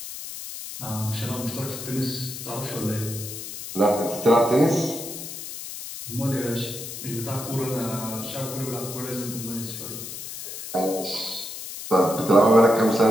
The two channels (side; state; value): left; noise; hiss, 9 dB below the sound